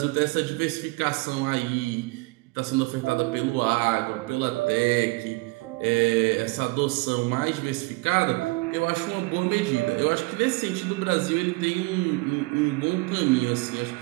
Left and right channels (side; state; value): left; quieter; 25.1 dB